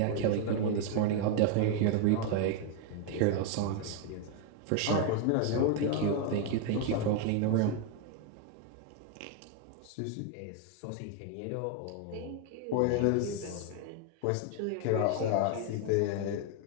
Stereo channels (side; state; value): both; different; correlation 0.01